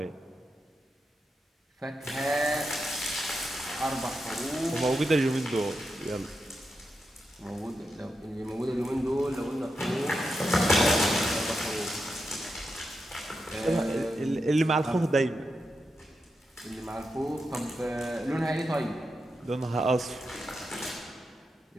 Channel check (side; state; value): both; normal; correlation 0.87